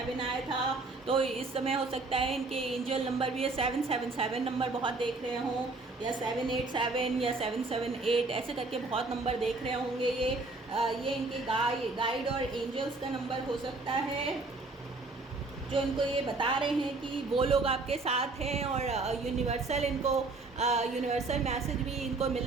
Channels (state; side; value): quieter; left; 3.4 dB